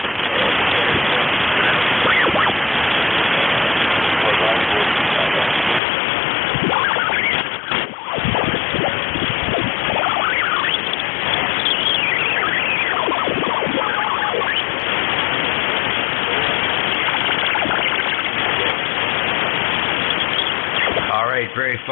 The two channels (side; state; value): right; drops out; at 5.8 s